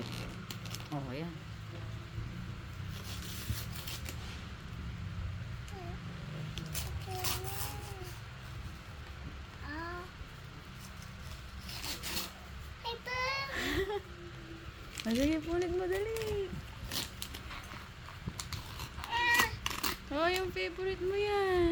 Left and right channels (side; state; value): both; identical; correlation 1.00